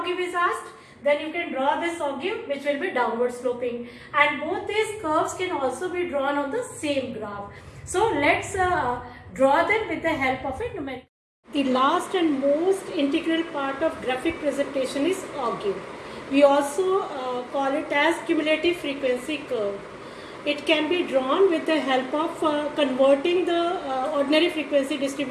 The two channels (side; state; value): both; identical; correlation 1.00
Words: is asked, then you can draw this ogive which will be downward sloping, and both these curves can also be drawn on the same graph. So let's draw them with the help of a numerical. The last and most integral part of graphic presentation is ogive. We also call it as cumulative frequency curve. It can be drawn with the help of converting the ordinary frequency